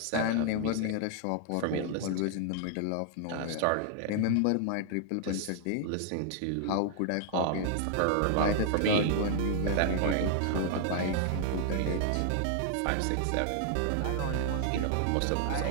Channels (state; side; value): different; both; correlation 0.00